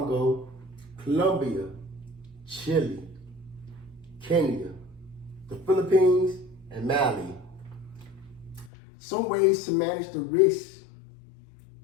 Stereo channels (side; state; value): right; drops out; at 8.7 s